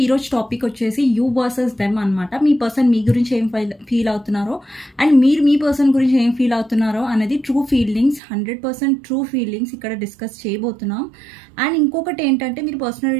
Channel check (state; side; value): drops out; left; at 8.2 s